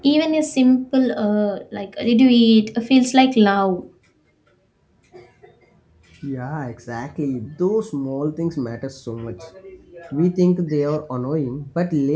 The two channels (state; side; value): identical; both; correlation 1.00